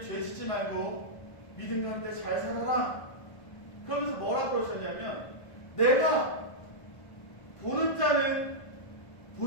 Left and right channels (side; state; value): right; late; 1.5 ms